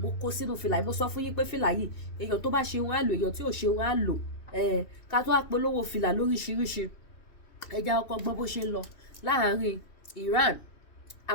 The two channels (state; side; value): late; right; 2.7 ms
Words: kó sínú fìlà yìí mo sọ fún yín pé fìlà yìí èèyàn tó bá ṣe wọn á lò èèyàn tí ò ṣe wọn á lò ká tó wá polówó fìlà lóríṣiríṣi ẹja ọkọ̀ gbọ́ bó ṣe ń lọ láàárín Iran